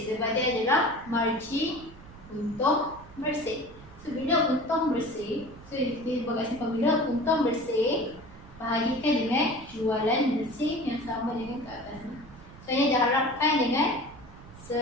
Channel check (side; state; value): right; noise; rumble, 19 dB below the sound